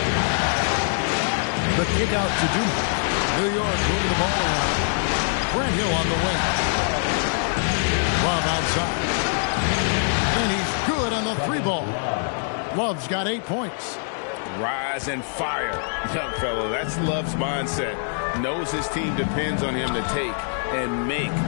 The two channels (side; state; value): right; silent; 63 dB below the other